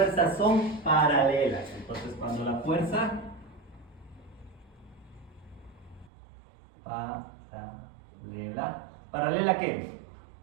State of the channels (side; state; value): left; drops out; at 6.1 s